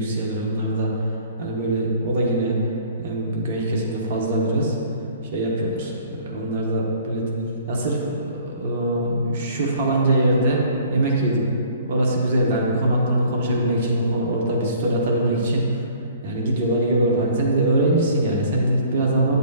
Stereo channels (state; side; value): inverted; both; correlation -0.53